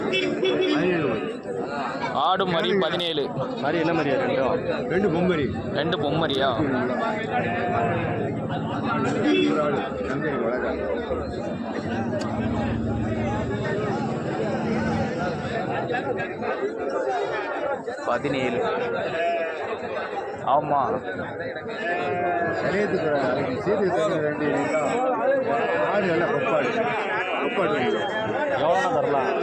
ஆடு மரி 17. மாதிரி என்ன மாதிரியா? ரெண்டு பொம்மரி. ரெண்டு பொம்மரியா? பதினேழு. ஆமாம், சரியத்துக்கு சேர்த்து ரெண்டு ஆடு நல்லா கொப்பாடு. கொப்பாடு எவ்வளோனா தரலாம்?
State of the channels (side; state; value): both; identical; correlation 1.00